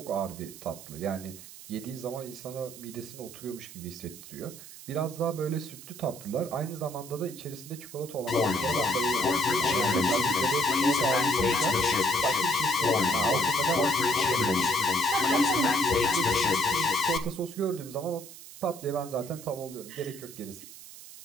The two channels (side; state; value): right; noise; hiss, 16 dB below the sound